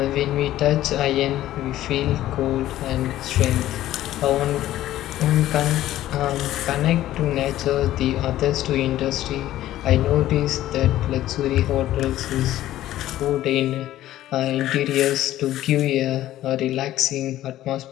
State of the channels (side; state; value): right; quieter; 14.0 dB